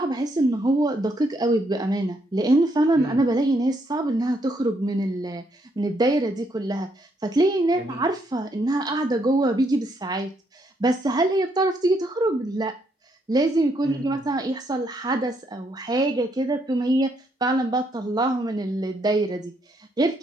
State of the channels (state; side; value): normal; both; correlation 0.74